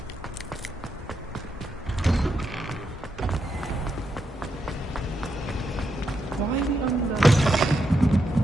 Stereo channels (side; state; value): both; normal; correlation 0.83